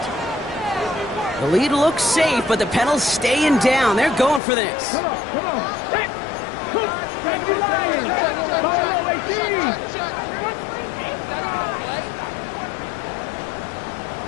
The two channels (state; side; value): drops out; right; at 4.4 s